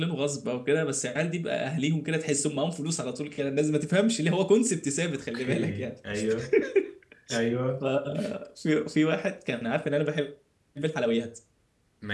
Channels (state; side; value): identical; both; correlation 1.00